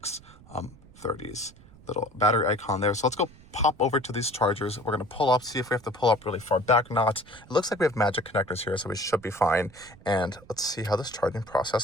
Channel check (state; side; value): noise; right; rumble, 23 dB below the sound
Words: little battery icon there. So let's go pop over to these chargers. We're going to pull up, see if we have to pull up really far back or not. It looks like we have magic connectors here, so we should be fine. And let's see how this charging